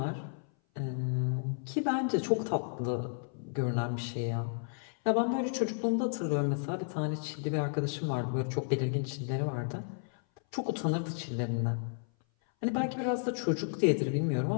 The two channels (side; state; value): right; silent; 56 dB below the other